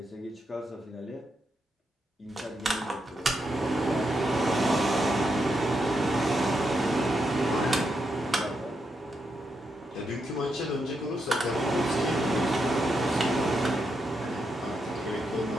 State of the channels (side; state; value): both; normal; correlation 0.83